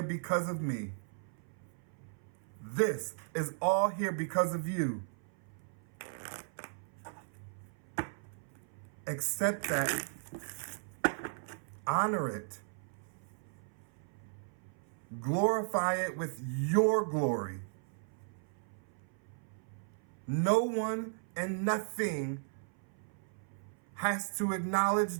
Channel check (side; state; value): left; silent; 54 dB below the other